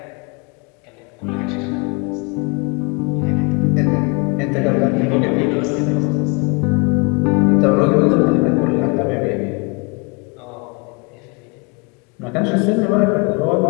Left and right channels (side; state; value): right; quieter; 30.9 dB